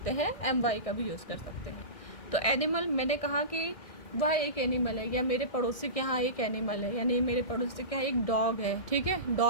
हैं, MY का भी यूज़ कर सकते हैं। तो एनिमल मैंने कहा कि वह एक एनिमल है, या मेरे पड़ोसी के यहाँ एक एनिमल है, यानी मेरे पड़ोसी के यहाँ एक डॉग है, ठीक है,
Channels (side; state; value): right; late; 1.6 ms